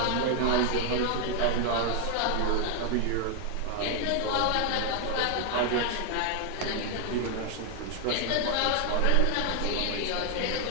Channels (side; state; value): both; different; correlation 0.00